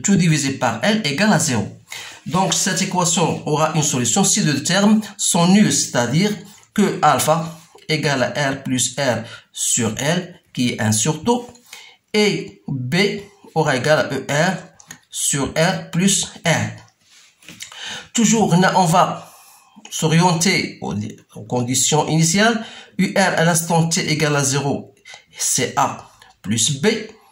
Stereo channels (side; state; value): both; identical; correlation 1.00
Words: tout divisé par L égale à 0. Donc, cette équation aura une solution si les deux termes sont nuls, c'est-à-dire que alpha égale à R plus R sur L, qui est 1 sur tau, et B aura égal à ER sur R plus R. Toujours, on va s'orienter aux conditions initiales. UR à l'instant t égale à 0, c'est A plus B.